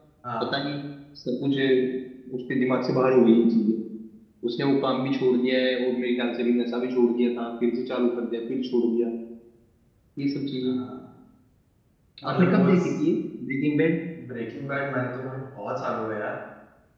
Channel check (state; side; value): identical; both; correlation 1.00